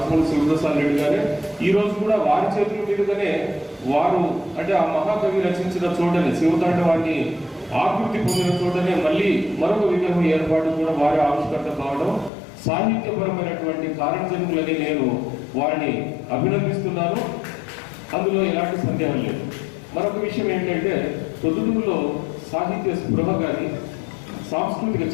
శివప్రసాద్ రెడ్డి గారే ఈ రోజు కూడా వారి చేతుల మీదుగానే వారు అంటే ఆ మహాకవి రచించిన చోటనే శివతాండవాన్ని ఆకృతి పొందిన చోటనే మళ్ళీ మరొక విగ్రహం ఏర్పాటు కూడా వారి ఆవిష్కర్త కావడం సాహిత్యపరమైనటువంటి కారణజన్ములని నేను వారిని అభినందిస్తున్నాను. అందులో ఎలాంటి సందేహం లేదు. మరొక విషయం ఏంటంటే ప్రొద్దుటూరులో సాహిత్య స్పృహ కానీ సాంస్కృతిక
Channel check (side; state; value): right; drops out; at 12.3 s